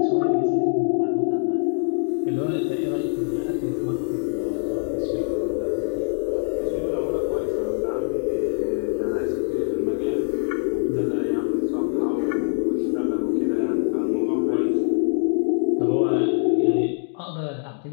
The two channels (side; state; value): right; silent; digital silence